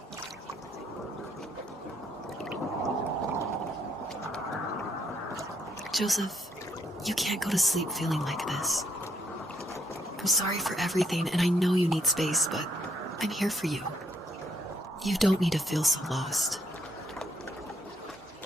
Joseph, you can't go to sleep feeling like this. I'm sorry for everything, and I know you need space, but I'm here for you. You don't need to feel so lost.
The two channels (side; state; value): both; normal; correlation 0.72